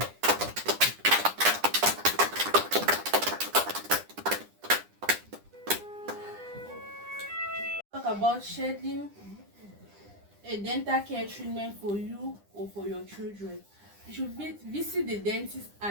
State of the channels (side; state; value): left; late; 9.9 ms